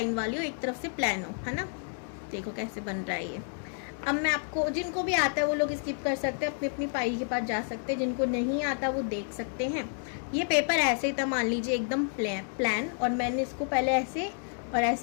वाली हो, एक तरफ से प्लान हो, है ना। देखो कैसे बन रहा है ये। अब मैं आपको, जिनको भी आता है वो लोग स्किप कर सकते हैं, अपनी फाइल के पास जा सकते हैं, जिनको नहीं आता वो देख सकते हैं। ये पेपर ऐसे ही था, मान लीजिए एकदम प्लान, और मैंने इसको पहले ऐसे और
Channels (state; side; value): silent; right; 58 dB below the other